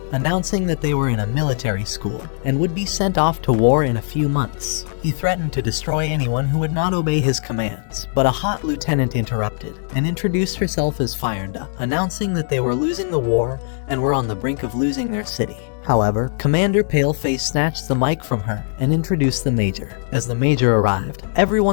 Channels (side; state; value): right; silent; digital silence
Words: announcing that they were in a military school and would be sent off to war in a few months. He threatened to destroy anyone who would not obey his commands, but a hot lieutenant interrupted and introduced herself as Firenda, announcing that they were losing the war and were on the brink of losing their city. However, Commander Paleface snatched the mic from her and introduced the Major. As the Major arrived,